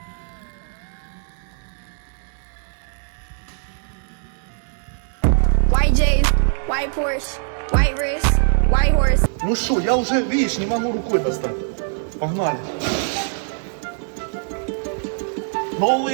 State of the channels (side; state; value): left; silent; digital silence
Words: White J's, white Porsche, white wrist, white horse. Ну что, я уже, видишь, не могу рукой достать. Погнали.